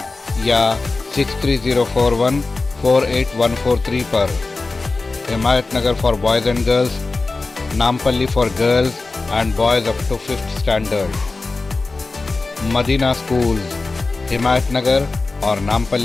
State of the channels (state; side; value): quieter; right; 3.6 dB